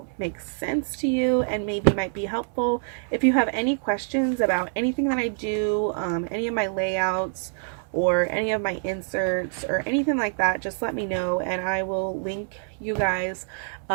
makes sense to you and maybe might be helpful. If you have any questions about anything that I do, any of my layouts, or any of my inserts or anything like that, just let me know, and I will link you guys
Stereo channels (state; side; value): silent; left; digital silence